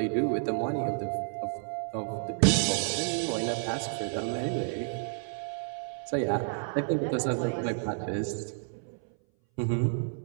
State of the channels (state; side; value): silent; left; 57 dB below the other